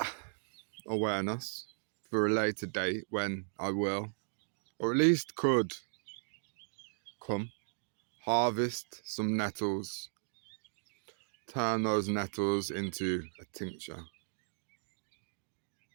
awareness for a later date when I will, or at least could, come harvest some nettles, turn those nettles into a tincture.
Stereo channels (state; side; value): silent; left; digital silence